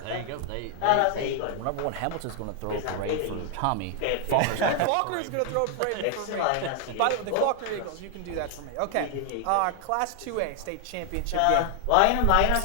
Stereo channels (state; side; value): different; both; correlation 0.00